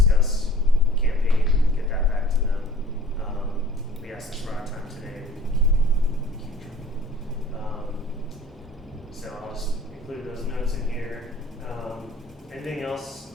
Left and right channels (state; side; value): normal; both; correlation 0.49